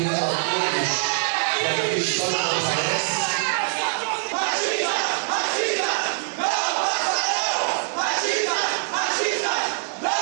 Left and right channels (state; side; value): silent; left; digital silence